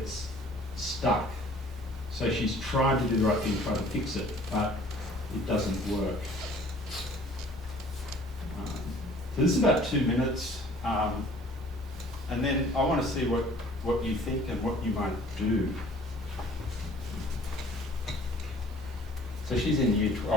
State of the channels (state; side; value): normal; both; correlation 0.52